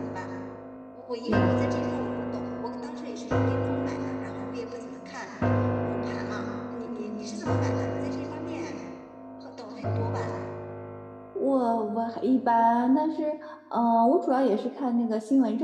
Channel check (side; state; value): both; identical; correlation 1.00